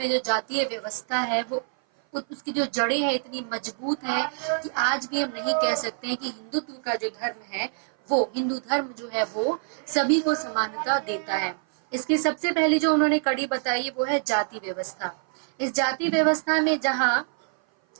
जो जातीय व्यवस्था है वो उसकी जो जड़ें हैं इतनी मजबूत है कि आज भी हम नहीं कह सकते हैं कि हिंदुत्व का जो धर्म है, वो हिंदू धर्म जो है वो सभी को समानता देता है। इसकी सबसे पहली जो उन्होंने कड़ी बताई वो है जाति व्यवस्था। इस जाति व्यवस्था में जहाँ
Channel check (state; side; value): silent; left; 56 dB below the other